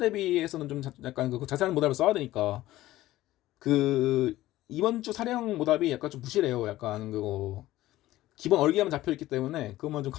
좀 약간 그 자세한 모답을 써야 되니까 그 이번 주 사례형 모답이 약간 좀 부실해요. 약간 그거 기본 얼개만 잡혀 있기 때문에 그것만 좀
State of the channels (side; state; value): right; quieter; 15.8 dB